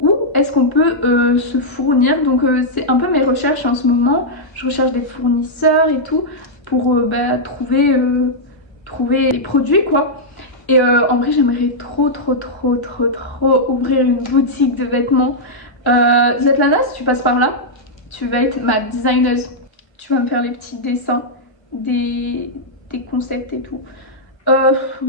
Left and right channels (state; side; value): late; right; 1.4 ms